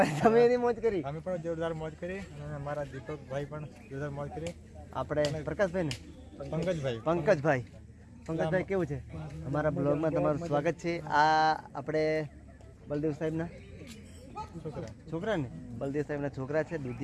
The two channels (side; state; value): both; identical; correlation 1.00